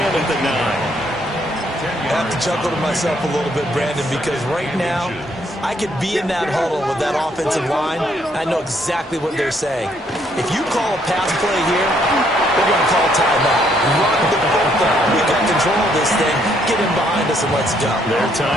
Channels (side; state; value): both; normal; correlation 0.69